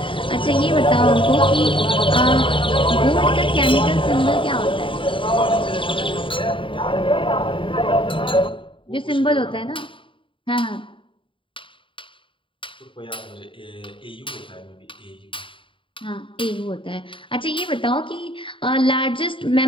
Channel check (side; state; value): right; late; 0.25 ms